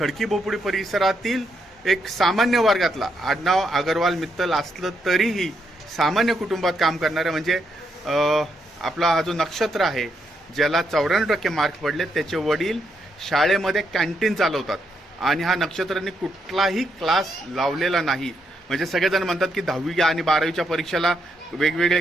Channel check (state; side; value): normal; both; correlation 0.79